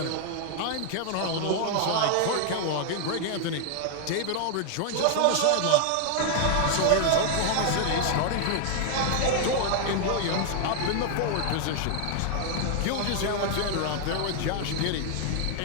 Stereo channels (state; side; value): different; both; correlation 0.00